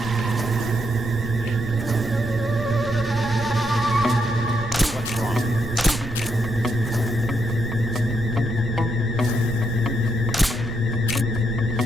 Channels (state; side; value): noise; right; rumble, 9 dB below the sound